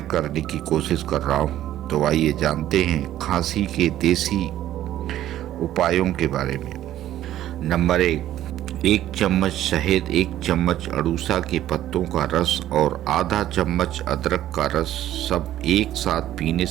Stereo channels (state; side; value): quieter; left; 12.8 dB